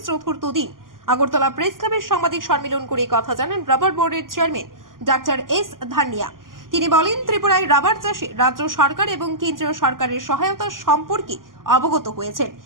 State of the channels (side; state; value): left; late; 0.91 ms